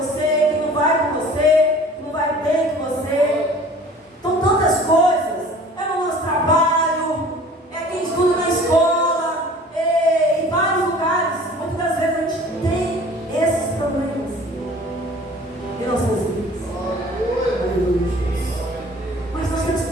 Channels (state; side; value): normal; both; correlation 0.47